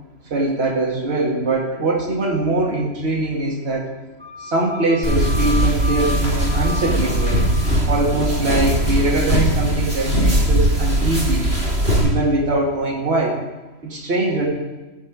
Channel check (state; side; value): late; left; 3.0 ms